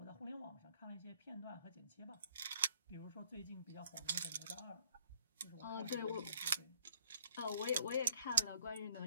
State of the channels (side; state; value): both; inverted; correlation -0.62